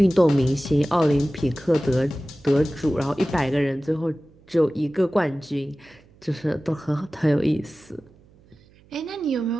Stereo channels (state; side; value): noise; right; hum, 28 dB below the sound